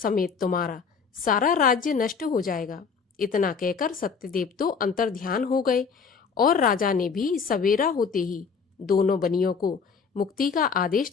तुम्हारा सारा राज्य नष्ट हो जाएगा। इतना कहकर सत्यदेव तो अंतर्ध्यान हो गए और राजा ने भी सवेरा होते ही दोनों बनियों को मुक्ति का आदेश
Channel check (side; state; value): right; quieter; 5.7 dB